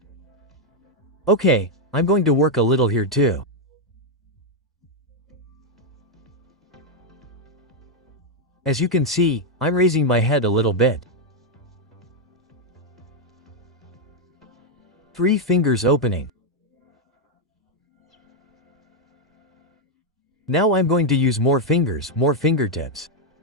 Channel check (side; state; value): both; normal; correlation 0.01